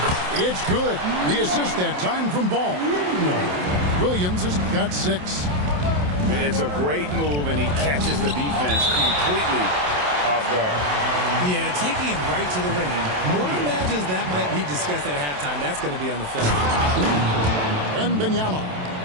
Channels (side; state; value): left; late; 27 ms